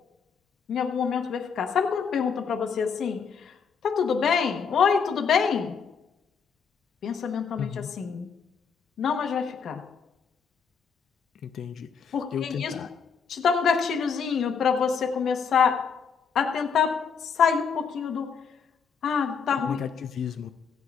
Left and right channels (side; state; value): right; quieter; 6.2 dB